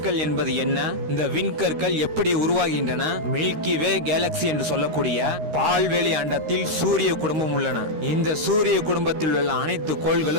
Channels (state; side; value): late; left; 13 ms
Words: என்பது என்ன, இந்த விண்கற்கள் எப்படி உருவாகின்றன, மில்கி வே கேலக்சி என்று சொல்லக்கூடிய பால்வெளி அண்டத்தில் சூரிய குடும்பம் உள்ளன. இந்த சூரிய குடும்பத்தில் உள்ள அனைத்து